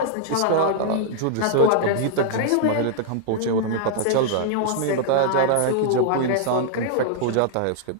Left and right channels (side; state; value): both; different; correlation -0.01